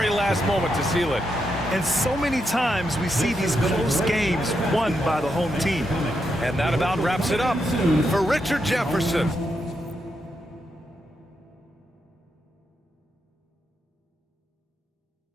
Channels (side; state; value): both; normal; correlation 0.83